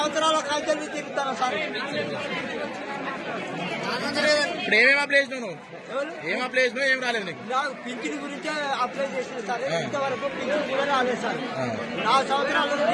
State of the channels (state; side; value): identical; both; correlation 1.00